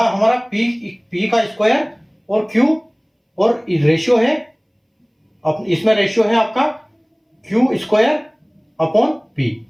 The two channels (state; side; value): identical; both; correlation 1.00